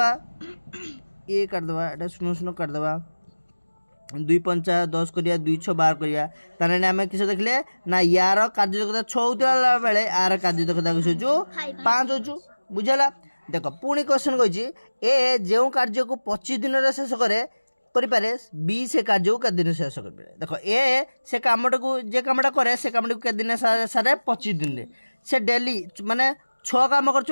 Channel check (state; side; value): inverted; both; correlation -1.00